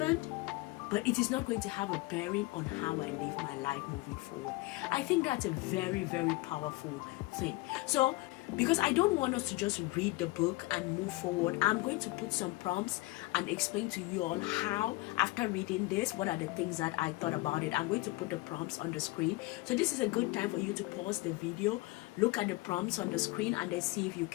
but it is not going to have a bearing on how I live my life moving forward. I think that's a very, very powerful thing. So, because I don't want us to just read the book and move forward, I'm going to put some prompts and explain to you all how, after reading this, what are the things that I thought about it. I'm going to put the prompts on the screen. So this is a good time for you to pause the video, look at the prompts on the screen, and then see if you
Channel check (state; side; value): quieter; right; 21.3 dB